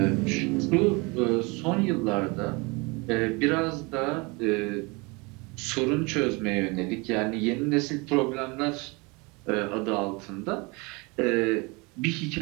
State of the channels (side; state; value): left; quieter; 27.5 dB